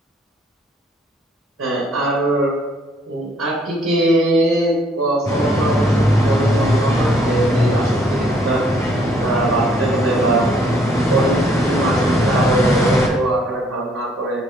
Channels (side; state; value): both; normal; correlation 0.65